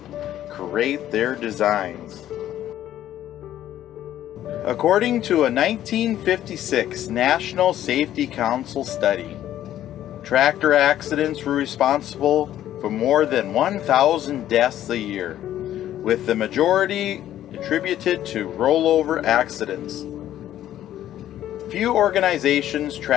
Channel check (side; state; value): right; quieter; 12.2 dB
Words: create their designs. According to a 1956 National Safety Council study, tractor accidents were responsible for more than 1,000 deaths a year, with the majority attributed to rollover accidents. Few organizations